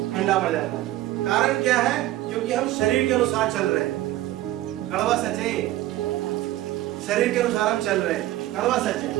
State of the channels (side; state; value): left; quieter; 15.4 dB